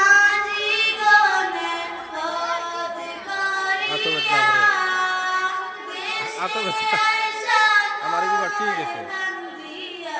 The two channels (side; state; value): both; identical; correlation 1.00